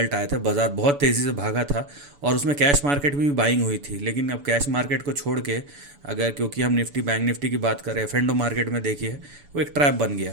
आए थे, बाज़ार बहुत तेज़ी से भागा था और उसमें कैश मार्केट में भी बाइंग हुई थी। लेकिन अब कैश मार्केट को छोड़ के अगर, क्योंकि हम निफ्टी बैंक निफ्टी की बात करें, एफ&ओ मार्केट में देखिए वो एक ट्रैप बन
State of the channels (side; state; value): left; late; 7.0 ms